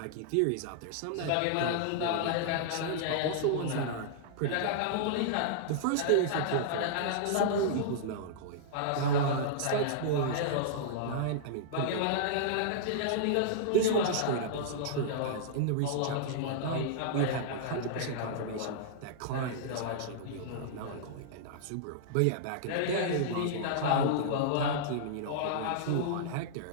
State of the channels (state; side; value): different; both; correlation -0.02